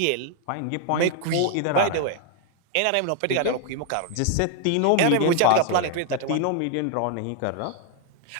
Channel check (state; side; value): different; both; correlation 0.00